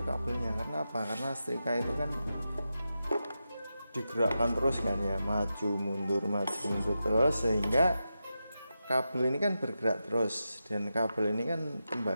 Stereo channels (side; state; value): both; inverted; correlation -0.90